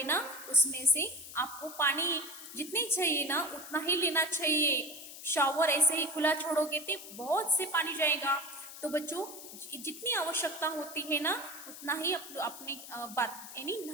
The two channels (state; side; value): noise; left; hiss, 13 dB below the sound